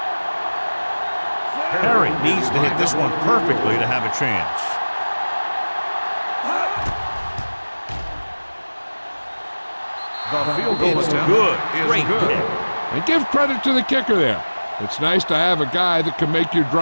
Perry needs to hit this one perfectly to have a chance. The field goal It's attempt good. is Great good. kick. And give credit to the kicker there. It's nice to have a guy that can make your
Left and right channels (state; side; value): inverted; both; correlation -1.00